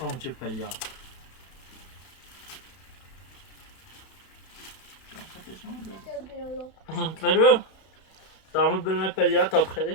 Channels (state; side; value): late; right; 31 ms